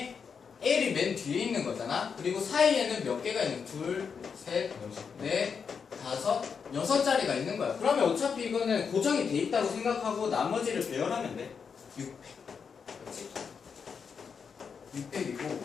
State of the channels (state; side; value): quieter; right; 6.2 dB